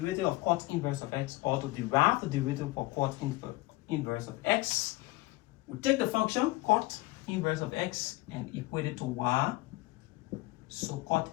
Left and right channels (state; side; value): quieter; right; 20.4 dB